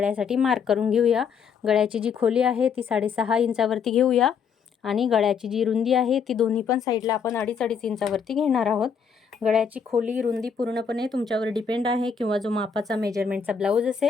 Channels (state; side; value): quieter; right; 6.5 dB